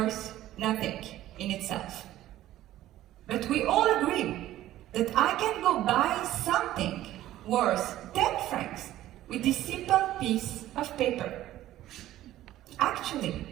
nothing in itself. But we all agree that I can go buy something worth 10 francs with this simple piece of paper. Actually,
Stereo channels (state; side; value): quieter; left; 14.1 dB